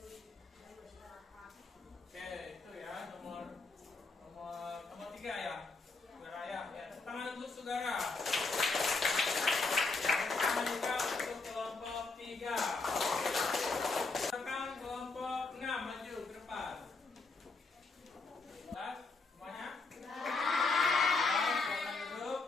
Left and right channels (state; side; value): quieter; right; 3.9 dB